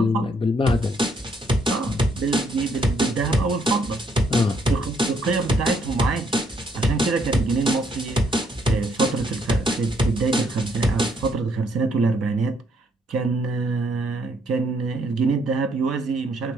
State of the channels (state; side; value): normal; both; correlation 0.70